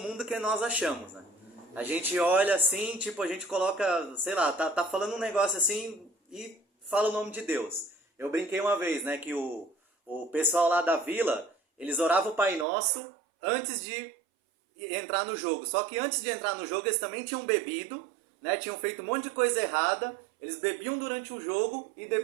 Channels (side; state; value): left; drops out; at 12.7 s